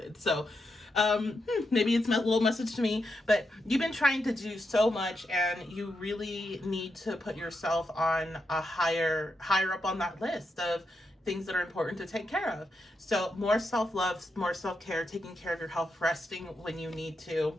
So maybe it's a little message to me, but you've been trying to do so much, and you really need to put yourself on a higher up on that list of things that are important to take care of. So more self-love, more self-care, taking care of your health, resting when you need to.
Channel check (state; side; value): normal; both; correlation 0.84